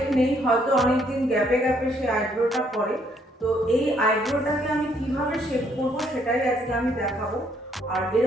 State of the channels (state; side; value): normal; both; correlation 0.68